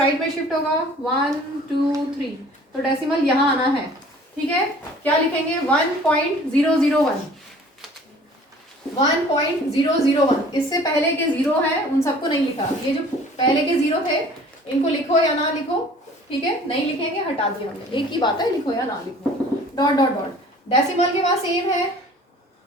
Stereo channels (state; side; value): normal; both; correlation 0.50